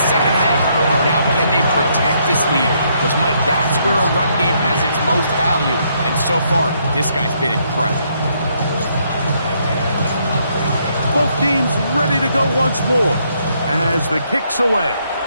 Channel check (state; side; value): inverted; both; correlation -0.72